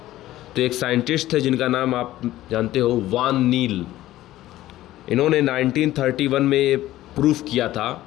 तो एक साइंटिस्ट थे जिनका नाम आप जानते हो, वान नील। इन्होंने 1931 में ये प्रूफ किया था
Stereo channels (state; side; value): quieter; right; 15.0 dB